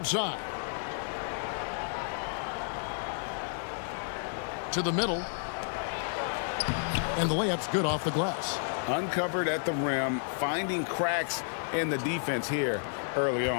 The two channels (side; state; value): right; silent; digital silence